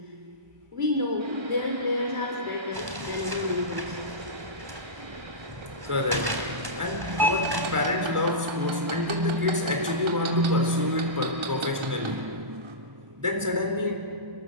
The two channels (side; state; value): left; late; 1.1 ms